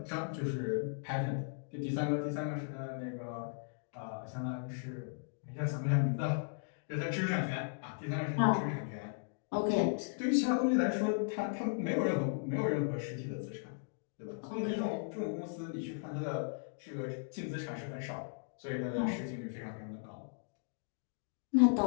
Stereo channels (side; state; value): right; silent; digital silence